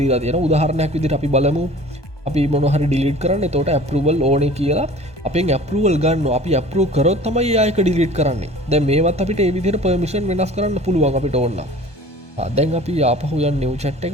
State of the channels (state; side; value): late; right; 1.2 ms